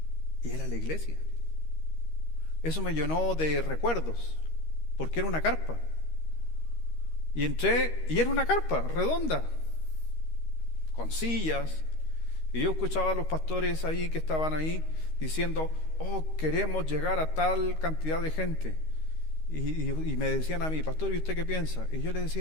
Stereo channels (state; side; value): late; right; 13 ms